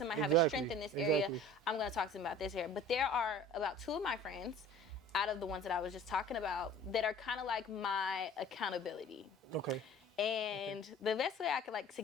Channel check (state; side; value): normal; both; correlation 0.46